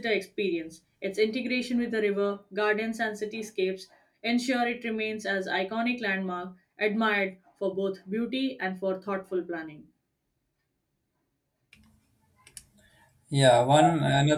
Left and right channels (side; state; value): both; identical; correlation 1.00